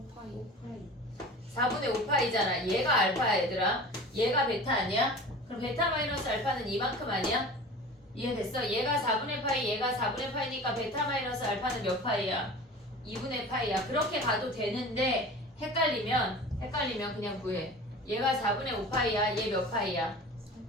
4분의 5파이잖아. 얘가 알파야 얘들아. 얘가 베타 아니야? 그럼 베타 마이너스 알파는 이만큼 아니야? 이해됐어? 얘가 4분의 파이 얘가 4분의 파이니까 베타 마이너스 알파는 몇 파이야? 2분의 파이야. 그렇게 가도 되는데 헷갈리면 그냥 구해. 얘가 4분의 5파이야. 얘 몇 파이야?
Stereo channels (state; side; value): normal; both; correlation 0.38